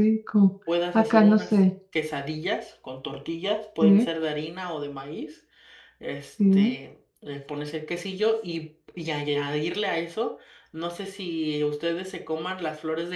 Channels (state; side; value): identical; both; correlation 1.00